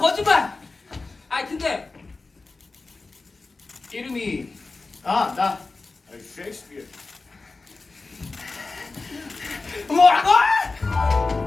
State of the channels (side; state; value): right; quieter; 3.7 dB